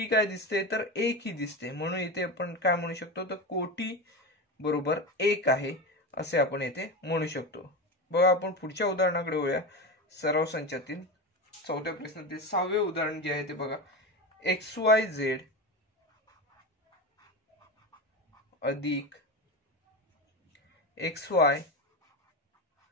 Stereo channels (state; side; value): normal; both; correlation 0.21